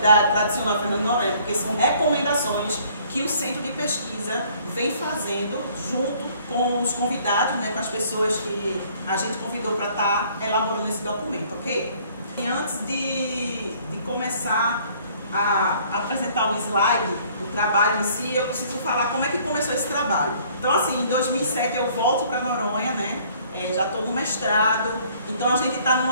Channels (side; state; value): both; inverted; correlation -0.58